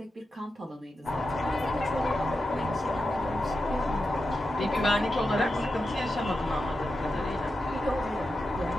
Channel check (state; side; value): normal; both; correlation 0.89